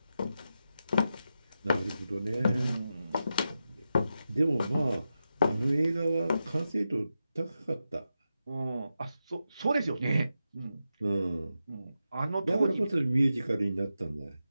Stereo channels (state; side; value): inverted; both; correlation -0.89